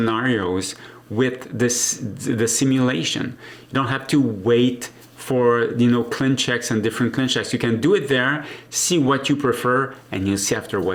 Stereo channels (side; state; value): both; identical; correlation 1.00